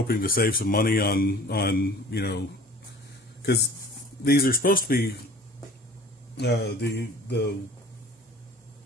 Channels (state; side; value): normal; both; correlation 0.46